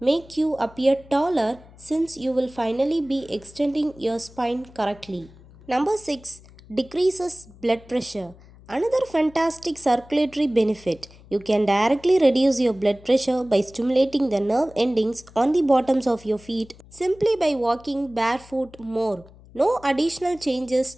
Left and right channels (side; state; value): left; noise; hum, 23 dB below the sound